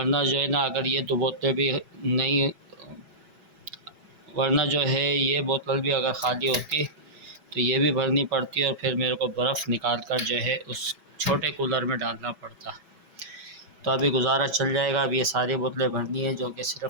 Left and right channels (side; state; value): left; late; 6.1 ms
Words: जो है ना अगर ये 2 बोतलें भी नहीं, वरना जो है ये बोतल भी अगर ख़ाली होती तो ये भी भरनी पड़ती और फिर मेरे को बर्फ़ निकाल कर जो है उस छोटे कूलर में डालना पड़ता। तो अभी गुजारा चल जाएगा। अब ये सारी बोतलें भरनी है, जो कि